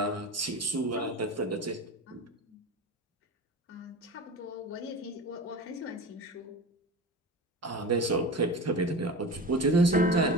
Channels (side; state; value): both; normal; correlation 0.31